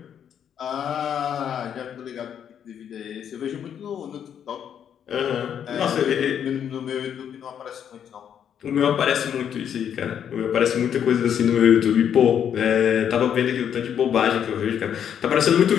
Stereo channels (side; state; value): right; quieter; 8.8 dB